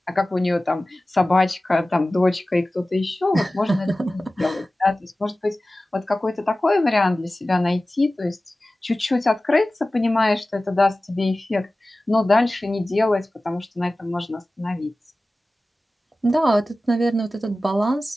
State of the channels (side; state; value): both; normal; correlation 0.96